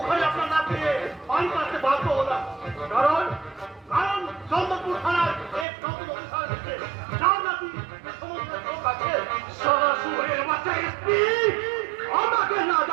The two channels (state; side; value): drops out; left; at 5.7 s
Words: আপনার না পেয়ে পানি পাচ্ছে বাধ্য হলাম। কারণ কারণ চন্দ্রপুর থানার এক নতুন অফিসার এসেছে, যার নাকি সমস্ত লোক আছে। সরাসরি বাচ্চা এসপি আমাকে না